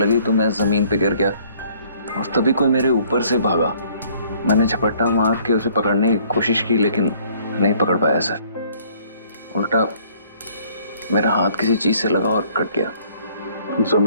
तो मैं जमीन पे गिर गया और तभी कोई मेरे ऊपर से भागा। मैंने झपट्टा मार के उसे पकड़ने की कोशिश की लेकिन नहीं पकड़ पाया सर। उल्टा मेरा हाथ किसी चीज से लगा और कट गया।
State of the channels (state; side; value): inverted; both; correlation -0.60